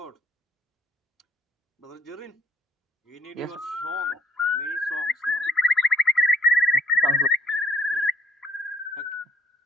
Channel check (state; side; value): normal; both; correlation 0.62